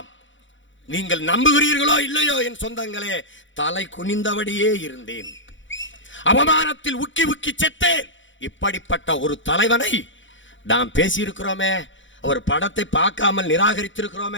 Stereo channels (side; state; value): right; late; 0.55 ms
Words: நீங்கள் நம்புகிறீர்களோ இல்லையோ என் சொந்தங்களே, தலை குனிந்தபடியே இருந்தேன். அவமானத்தில் உக்கி உக்கி செத்தேன். இப்படிப்பட்ட ஒரு தலைவனை நாம் பேசியிருக்கிறோமே, அவர் படத்தை பார்க்காமல்